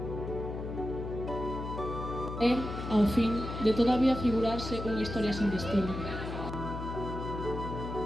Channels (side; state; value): left; noise; hum, 6 dB below the sound